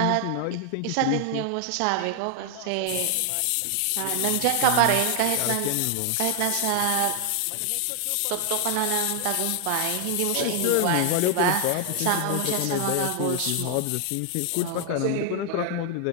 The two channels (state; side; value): different; both; correlation 0.00